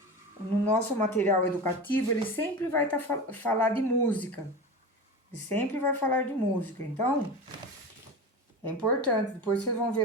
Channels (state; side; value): normal; both; correlation 0.28